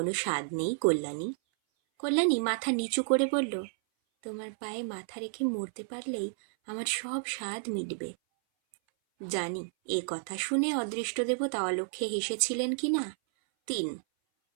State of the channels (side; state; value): left; silent; 57 dB below the other